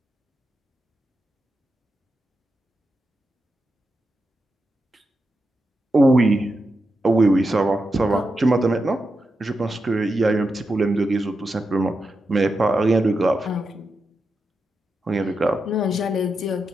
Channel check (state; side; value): normal; both; correlation 0.87